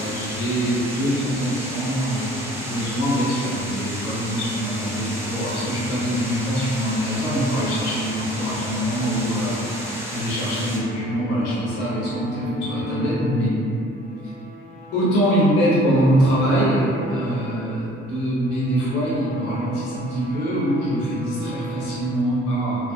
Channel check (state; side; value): normal; both; correlation 0.53